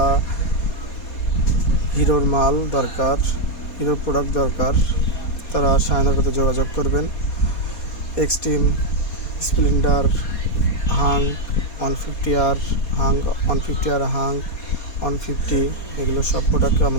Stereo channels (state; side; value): late; right; 4.2 ms